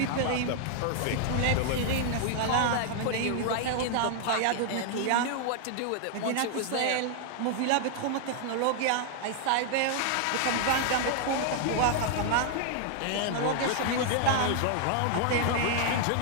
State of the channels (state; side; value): different; both; correlation 0.00